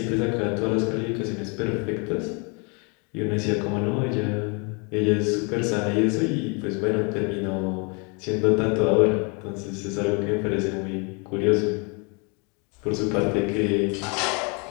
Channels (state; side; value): quieter; right; 33.3 dB